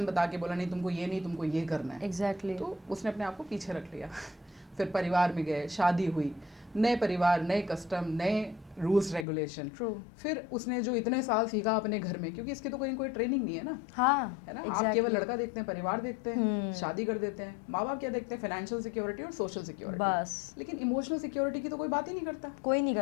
बता के बोला नहीं तुमको ये नहीं, तुमको ये करना है। Exactly. तो उसने अपने आप को पीछे रख लिया। फिर परिवार में गए, शादी हुई, नए परिवार, नए कस्टम, नए रूल्स रेगुलेशन। फिर उसने जो इतने साल सीखा अपने घर में, क्योंकि इसकी तो कोई ट्रेनिंग नहीं है ना। हाँ, है ना। आप केवल लड़का देखते हैं, परिवार देखते हैं, शादी कर देते हैं। माँ बाप क्या देखते हैं? फाइनेंशियल सिक्योरिटी और सोशल सिक्योरिटी, बस। लेकिन इमोशनल सिक्योरिटी की तो कोई बात ही नहीं करता। कोई नहीं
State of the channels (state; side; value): drops out; right; at 9.2 s